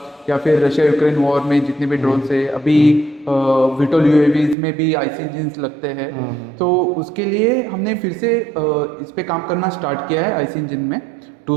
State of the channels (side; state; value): left; drops out; at 4.5 s